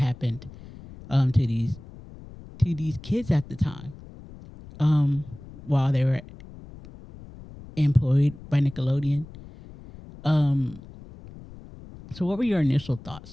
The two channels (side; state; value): left; noise; rumble, 18 dB below the sound